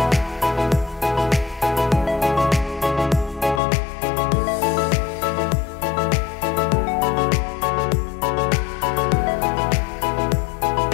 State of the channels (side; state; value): right; drops out; at 3.6 s